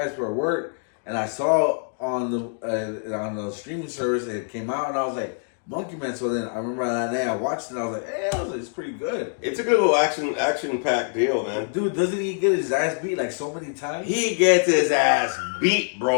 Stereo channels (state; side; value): silent; right; 62 dB below the other